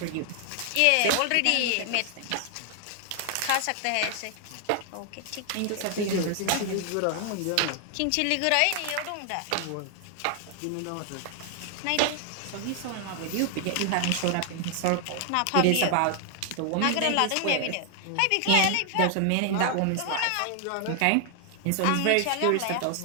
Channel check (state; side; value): different; both; correlation 0.00